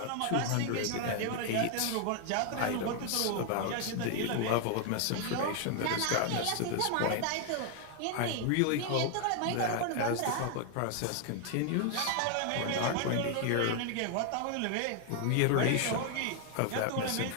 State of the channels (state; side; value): different; both; correlation 0.00